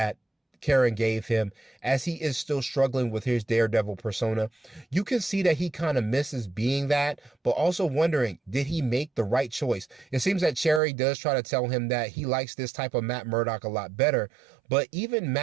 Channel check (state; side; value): drops out; left; at 10.8 s